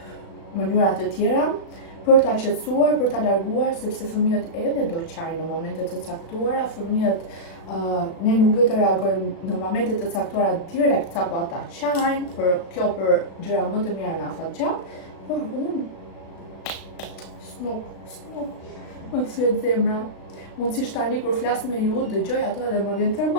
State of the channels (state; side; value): late; right; 36 ms